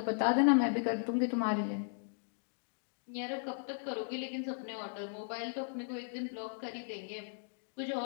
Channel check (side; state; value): right; silent; digital silence